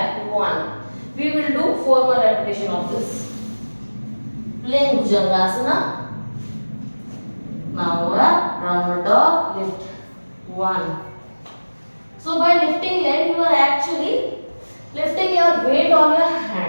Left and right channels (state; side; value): inverted; both; correlation -1.00